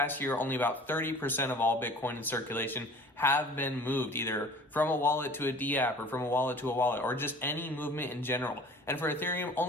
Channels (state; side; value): normal; both; correlation 0.46